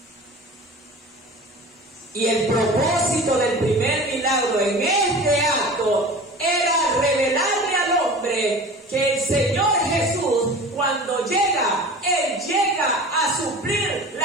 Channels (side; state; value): both; normal; correlation 0.38